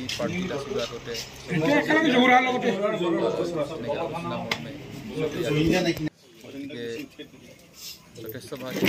পাৰ্টিত আছিলোঁ আগতে গতিকে যথেষ্ট ভাল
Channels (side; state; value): both; identical; correlation 1.00